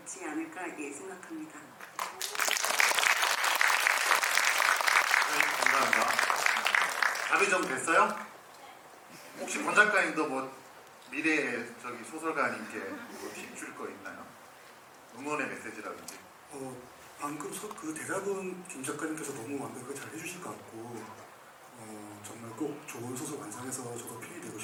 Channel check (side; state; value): both; identical; correlation 1.00